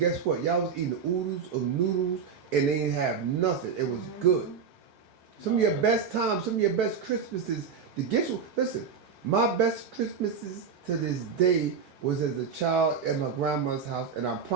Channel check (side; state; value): left; quieter; 6.2 dB